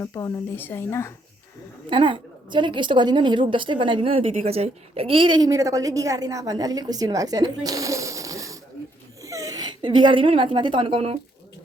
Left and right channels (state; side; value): normal; both; correlation 0.72